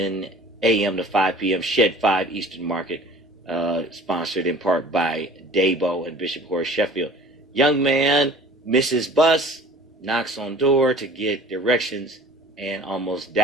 a.m. to 5 p.m. Shed 5 Eastern Market, sponsored in part by Dabo and Bishop Horace Sheffield. Young man misses bus, knocks on door to get directions, and almost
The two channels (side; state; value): both; normal; correlation 0.46